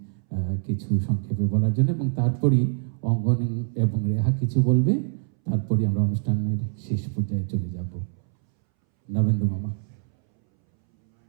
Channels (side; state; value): left; silent; 62 dB below the other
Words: কিছু সংক্ষেপে বলার জন্য, এবং তারপরই অঙ্গন এবং রেহা কিছু বলবে, তারপরই আমরা অনুষ্ঠানের শেষ পর্যায়ে চলে যাব। নবেন্দু মামা।